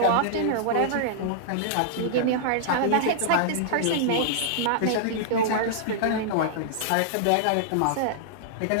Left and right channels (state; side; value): different; both; correlation -0.02